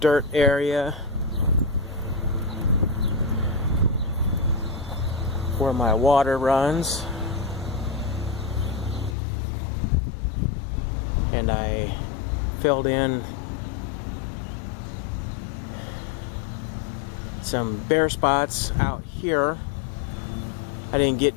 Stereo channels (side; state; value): right; drops out; at 9.2 s